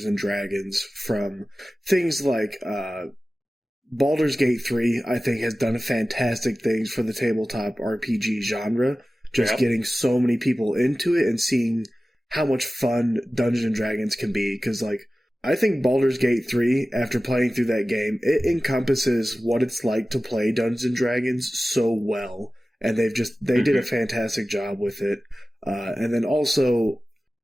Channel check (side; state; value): both; normal; correlation 0.96